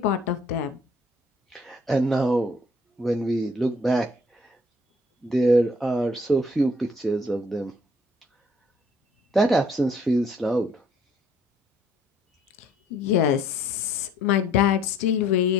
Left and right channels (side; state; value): both; normal; correlation 0.61